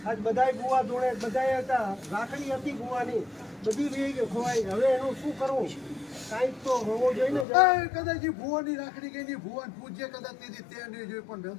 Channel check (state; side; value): drops out; right; at 7.5 s